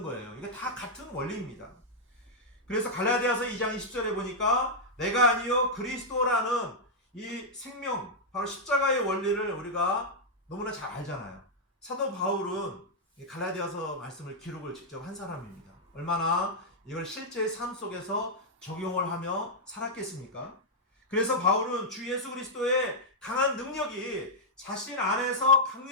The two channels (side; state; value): both; normal; correlation -0.05